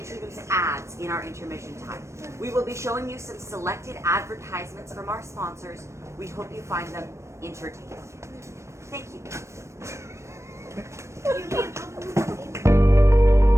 ads in our intermission time. We will be showing you some selected advertisements from our sponsors. We hope you find them entertaining. Thank you.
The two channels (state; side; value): late; left; 0.14 ms